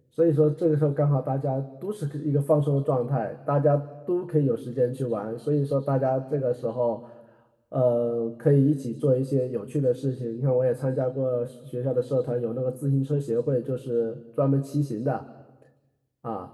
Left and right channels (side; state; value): both; identical; correlation 1.00